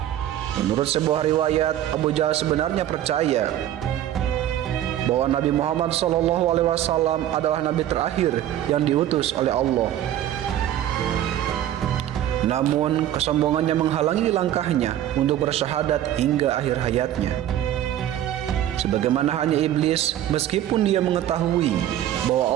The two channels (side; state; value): left; quieter; 12.0 dB